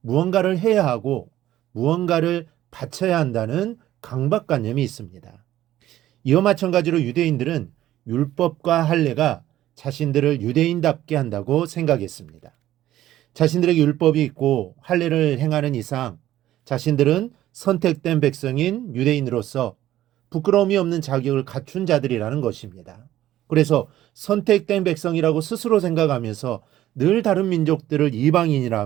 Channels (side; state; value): left; quieter; 13.6 dB